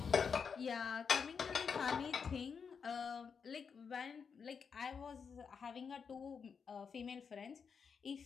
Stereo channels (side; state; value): right; quieter; 6.1 dB